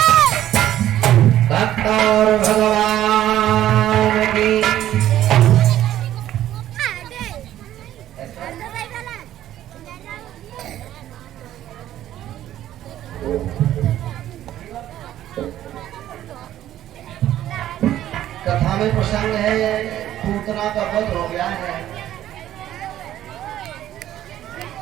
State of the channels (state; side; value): quieter; left; 12.5 dB